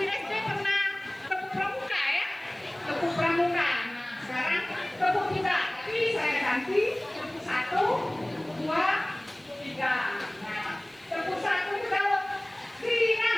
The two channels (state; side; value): noise; right; hiss, 30 dB below the sound